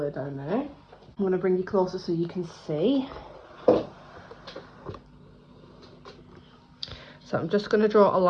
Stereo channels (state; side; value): identical; both; correlation 1.00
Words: down there. I'm going to bring you closer so you can see. So I'm just going to draw a